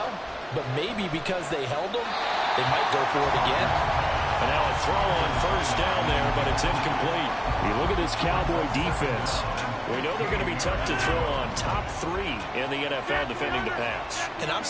but maybe because they held them, they might go for it again. And now a throw on first down there, but it's incomplete. You look at this Cowboy defense. We know they're going to be tough to throw on. Top 3 in the NFL defending the pass. And I'm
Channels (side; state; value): both; identical; correlation 1.00